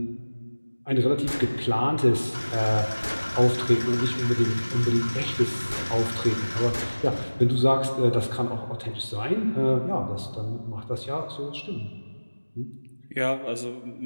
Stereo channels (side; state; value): both; inverted; correlation -1.00